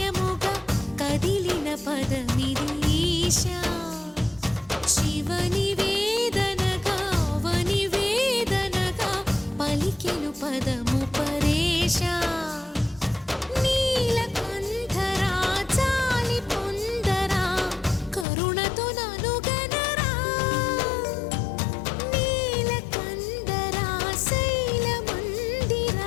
కదిలిన పదమిది ఈశా శివని వేదనగా అవని వేదనగా పలికెను పదము పరేశా నీలకంఠరా చాలి పొందరా కరుణతో ననుగనరా నీలకందరా శైల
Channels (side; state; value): right; drops out; at 18.2 s